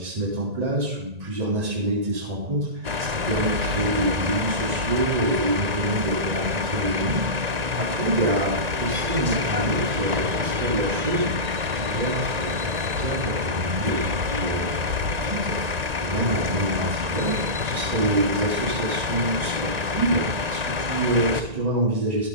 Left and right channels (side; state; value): left; late; 1.9 ms